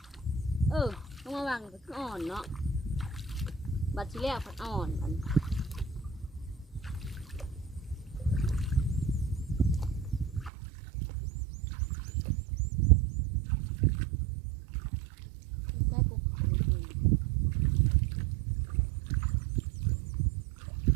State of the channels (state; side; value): drops out; left; at 10.5 s